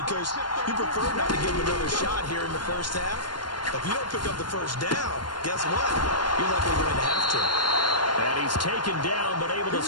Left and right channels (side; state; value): right; late; 0.71 ms